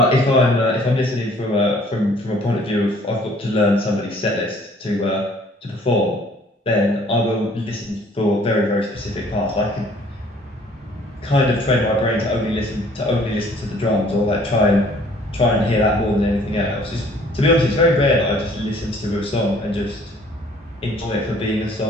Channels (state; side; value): normal; both; correlation 0.57